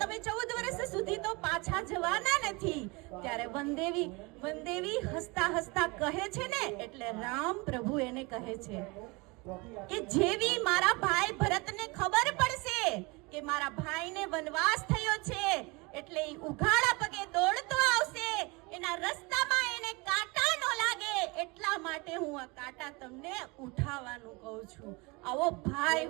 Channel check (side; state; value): left; quieter; 26.5 dB